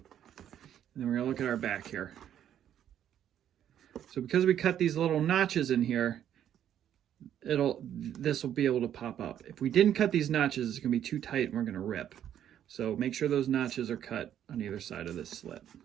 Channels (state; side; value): quieter; left; 10.3 dB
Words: then we're gonna look at our back here. So because we cut these little notches in here, this will be able to pop up. If we didn't cut these notches, it's gonna be too tight and we're gonna rip. So make sure those notches are cut on either side of this slit.